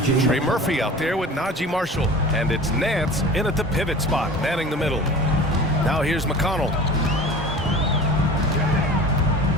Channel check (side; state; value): both; normal; correlation 0.39